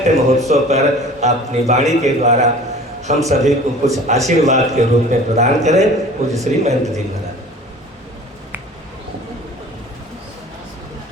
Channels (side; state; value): both; normal; correlation 0.44